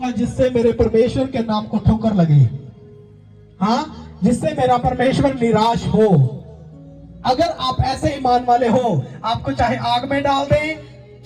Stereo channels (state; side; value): identical; both; correlation 1.00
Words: जिससे मेरे परमेश्वर के नाम को ठोकर लगे, हाँ, जिससे मेरा परमेश्वर निराश हो। अगर आप ऐसे ईमान वाले हो, आपको चाहे आग में डाल दें,